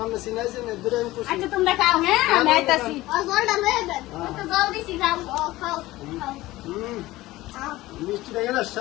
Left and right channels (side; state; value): right; quieter; 17.8 dB